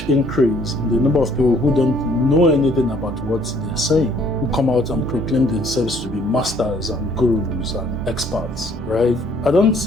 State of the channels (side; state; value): both; normal; correlation 0.61